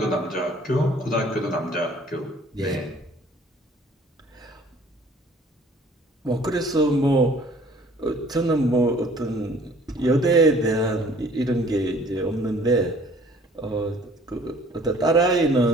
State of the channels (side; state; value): both; normal; correlation 0.55